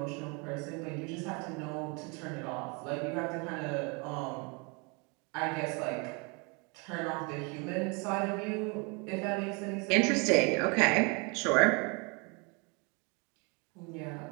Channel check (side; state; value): left; quieter; 31.2 dB